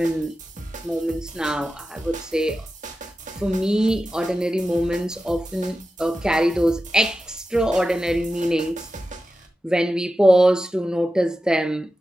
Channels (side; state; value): both; normal; correlation 0.92